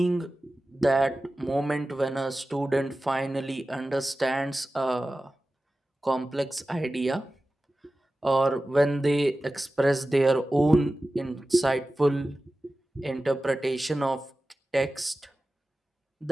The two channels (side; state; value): both; normal; correlation 0.95